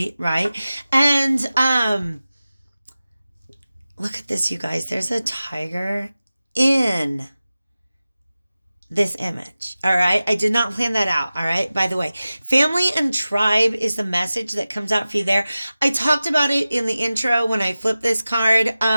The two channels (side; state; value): both; inverted; correlation -0.96